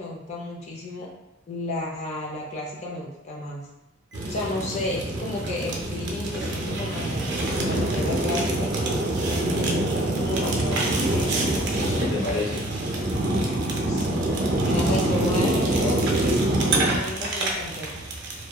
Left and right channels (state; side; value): normal; both; correlation 0.52